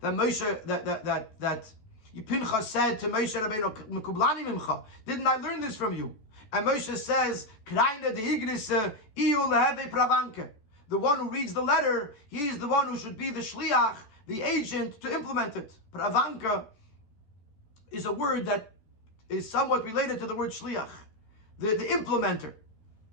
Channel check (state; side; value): late; right; 14 ms